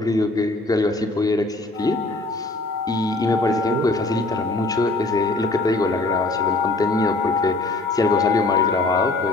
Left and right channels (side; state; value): right; quieter; 3.1 dB